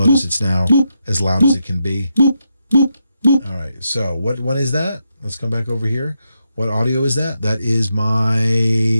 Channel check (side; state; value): both; inverted; correlation -0.84